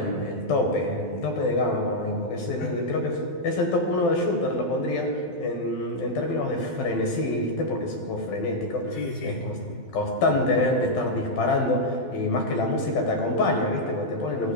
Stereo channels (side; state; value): right; late; 12 ms